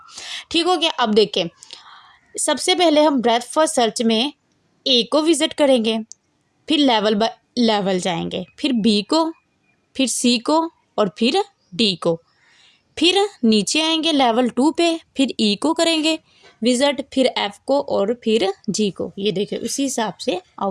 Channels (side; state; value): both; identical; correlation 1.00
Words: ठीक हो गया। अब देखें, सबसे पहले हम ब्रेथ फर्स्ट सर्च में ए को विजिट करेंगे, फिर लेवल बाय लेवल जाएंगे, फिर बी को, फिर सी को और फिर डी को, फिर नीचे आएंगे लेवल 2 पे, फिर ई को करेंगे विजिट, फिर एफ को और फिर जी को। ये देखिए उसी हिसाब से